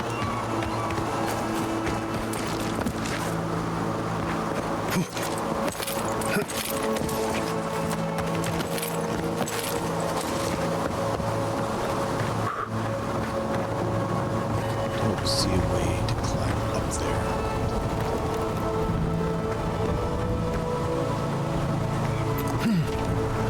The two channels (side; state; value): both; identical; correlation 1.00